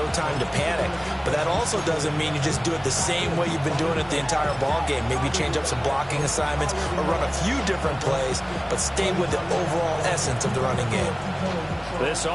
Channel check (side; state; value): both; identical; correlation 1.00